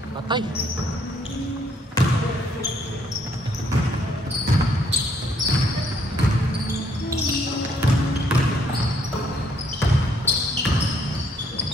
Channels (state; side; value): normal; both; correlation 0.68